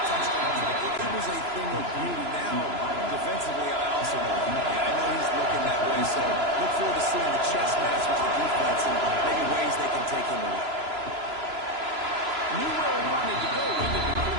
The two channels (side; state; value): left; late; 3.0 ms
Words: touchdowns. It was a thing of beauty. Now, defensively, I also know that. Yeah, I know he's looking that way, so look forward to seeing the chess match with the defense and maybe ways they can take him away. Knew where he wanted to go with it, but